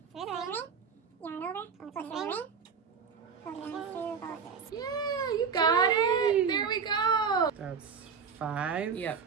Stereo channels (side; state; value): left; quieter; 6.2 dB